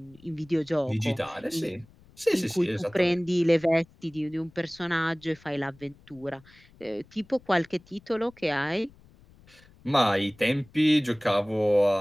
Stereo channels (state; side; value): noise; left; rumble, 27 dB below the sound